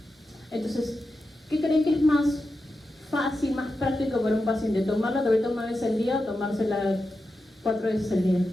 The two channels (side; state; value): both; normal; correlation 0.90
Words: Entonces, ¿qué creen que es más fácil, más práctico para un paciente? ¿Tomar la tableta una vez al día o tomársela 4 veces al día?